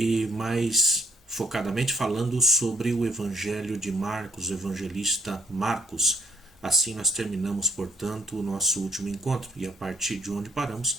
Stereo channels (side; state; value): both; normal; correlation 0.66